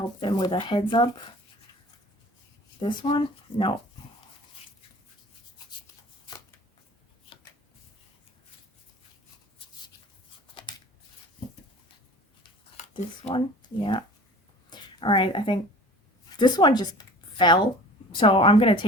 them with a heads up. This one? No. This one? Yeah. All right, I think this one just fell. So I'm going to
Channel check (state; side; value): normal; both; correlation 0.44